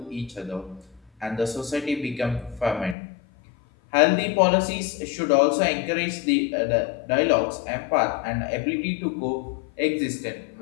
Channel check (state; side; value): drops out; right; at 3.0 s